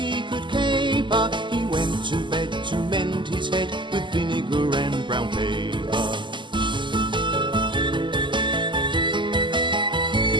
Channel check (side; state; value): left; late; 0.23 ms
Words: could caper. He went to bed to mend his head with vinegar and brown paper.